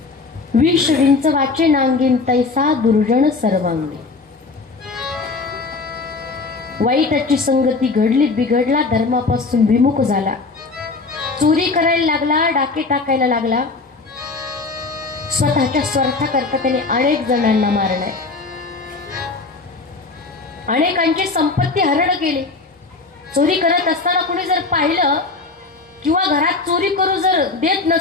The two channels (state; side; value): quieter; right; 3.9 dB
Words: विष विंच वाचे नांगीन तैसा दुर्जन सर्वांगी वाईटाची संगती घडली बिघडला धर्मापासून विमुख झाला चोरी करायला लागला डाके टाकायला लागला स्वतःच्या स्वार्थाकरता त्याने अनेक जणांना मारलाय अनेकांची संपत्ती हरण केली चोरी करत असताना कोणी जर पाहिलं किंवा घरात चोरी करू जर देत